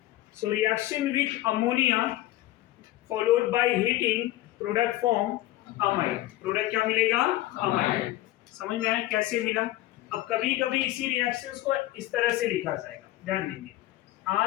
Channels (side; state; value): right; quieter; 15.9 dB